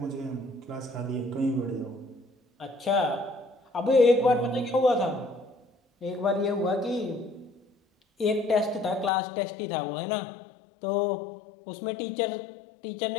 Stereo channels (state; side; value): drops out; right; at 9.1 s